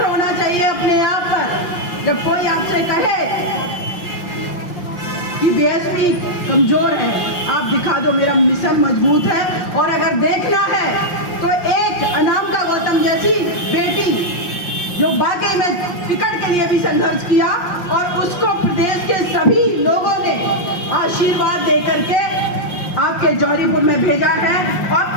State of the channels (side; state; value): right; late; 5.7 ms